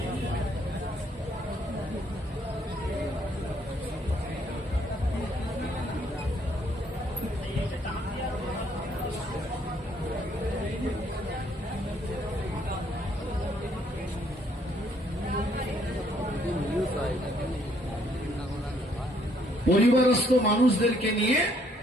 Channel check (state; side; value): normal; both; correlation 0.67